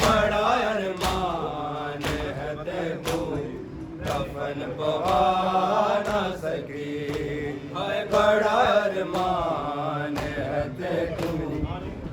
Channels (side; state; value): both; identical; correlation 1.00